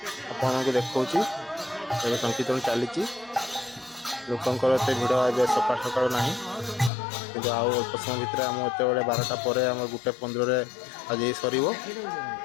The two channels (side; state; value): right; drops out; at 6.9 s